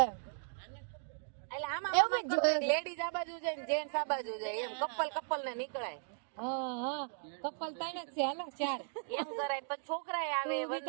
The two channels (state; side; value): silent; left; digital silence